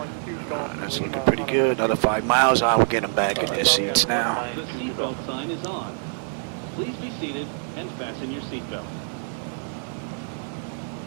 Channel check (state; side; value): silent; left; digital silence